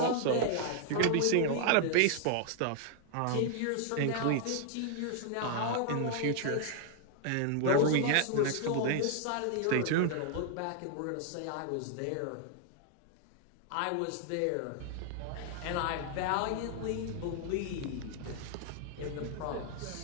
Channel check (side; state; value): both; different; correlation 0.00